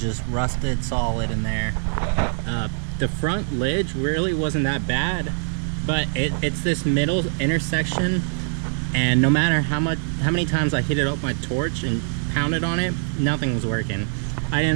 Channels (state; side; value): silent; left; 63 dB below the other